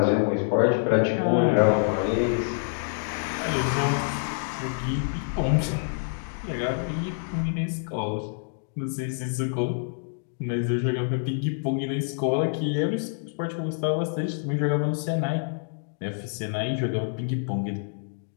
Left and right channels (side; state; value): right; silent; digital silence